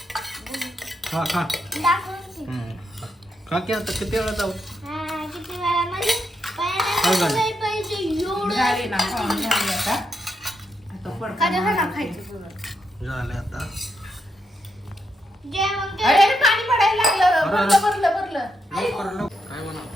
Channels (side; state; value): both; normal; correlation 0.81